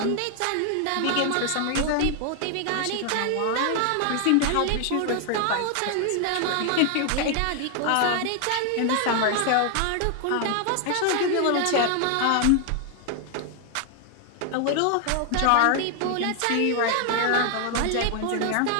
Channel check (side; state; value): both; different; correlation 0.00